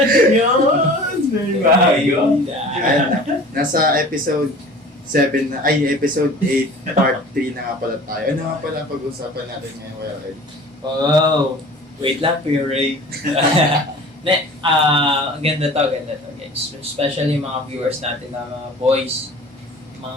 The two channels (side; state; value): both; normal; correlation 0.43